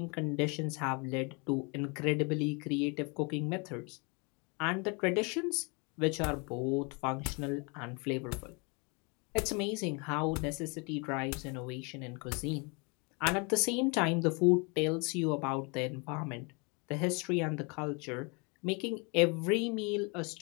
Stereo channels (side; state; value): right; quieter; 31.7 dB